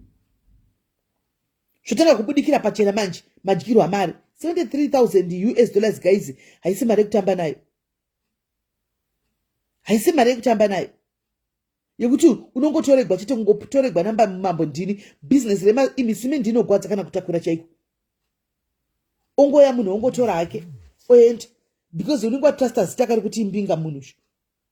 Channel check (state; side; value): identical; both; correlation 1.00